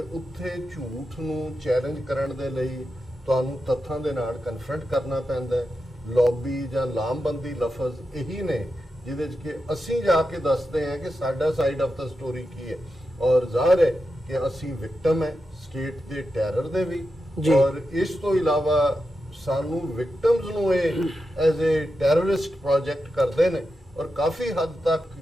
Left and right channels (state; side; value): normal; both; correlation 0.89